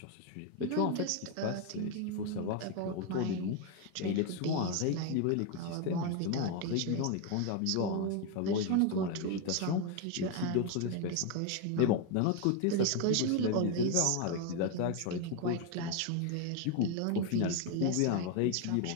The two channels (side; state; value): both; different; correlation 0.01